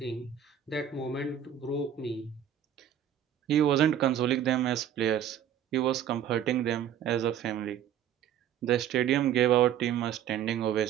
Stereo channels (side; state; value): left; quieter; 9.7 dB